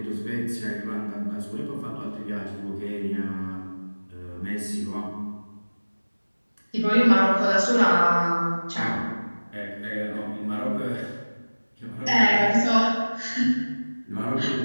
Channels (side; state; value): both; inverted; correlation -1.00